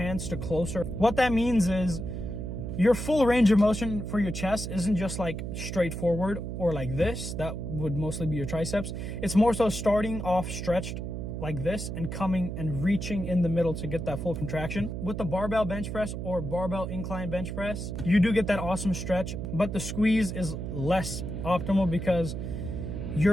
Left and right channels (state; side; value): noise; right; hum, 5 dB below the sound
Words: to closer. What that means is your full range of motion for your chest isn't just like straight forward or like this. That would mostly be your triceps. It's more so starting off stretched like this and coming and reaching in the middle to get that full contraction. With the barbell bench press or barbell incline bench press, you do get that awesome stretch, but the squeeze is less optimal because